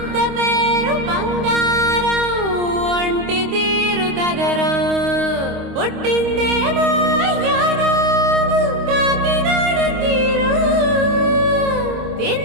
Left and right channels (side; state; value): left; late; 26 ms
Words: పేరు బంగారం ఒంటి తీరు తగరం పుట్టిందేమో యానాము కాకినాడ తీరు